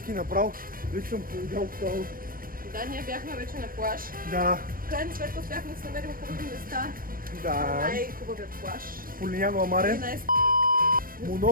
направо. Вече съм повидял това. Да, ние бяхме вече на плаж. Да, В крайна сметка успяхме да се намерим хубави места. да. Най-хубавият плаж. Полиняно И Амаре. най-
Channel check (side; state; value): left; late; 0.41 ms